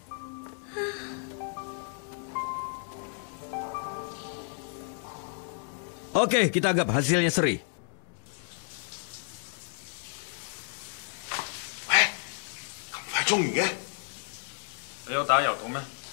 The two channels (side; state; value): right; silent; 56 dB below the other